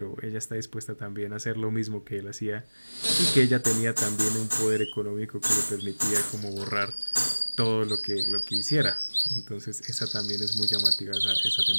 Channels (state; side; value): inverted; both; correlation -1.00